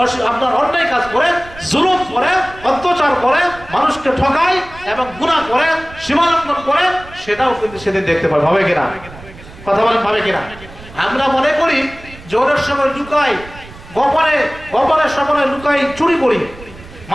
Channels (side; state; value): right; noise; rumble, 18 dB below the sound